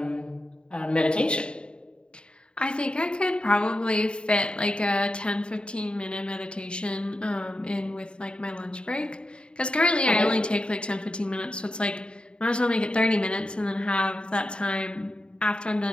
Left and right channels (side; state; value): right; late; 0.052 ms